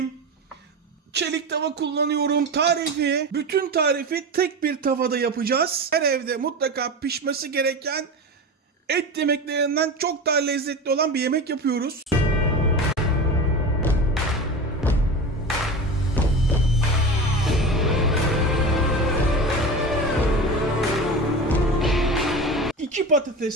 Çelik tava kullanıyorum. Bütün tarifi tek bir tavada yapacağız. Her evde mutlaka pişmesi gereken et yemeklerinden çok daha lezzetli olan bir yemek yapıyoruz. İki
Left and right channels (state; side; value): normal; both; correlation 0.28